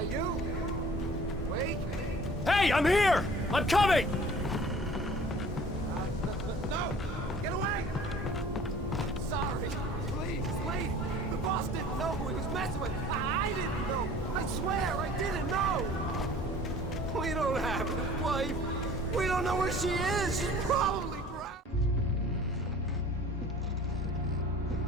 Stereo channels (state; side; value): normal; both; correlation 0.48